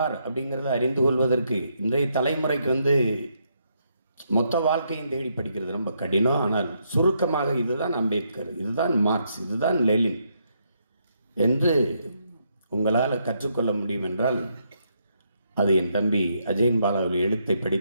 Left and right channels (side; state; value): both; inverted; correlation -0.77